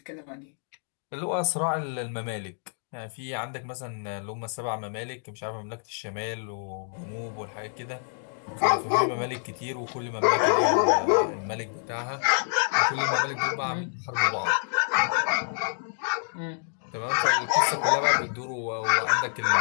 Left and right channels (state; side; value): silent; right; digital silence